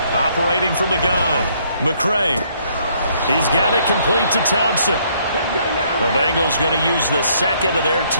Operating from the gun, McCray. He's got it complete to Thompson. The Bengals going to use the second of their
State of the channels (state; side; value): inverted; both; correlation -0.67